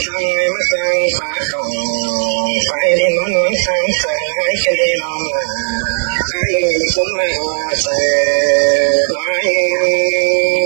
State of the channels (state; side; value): silent; left; 70 dB below the other